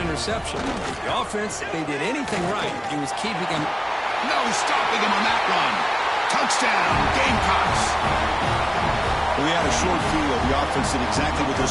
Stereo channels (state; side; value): identical; both; correlation 1.00